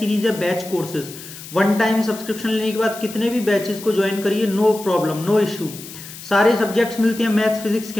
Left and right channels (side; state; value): left; noise; hiss, 14 dB below the sound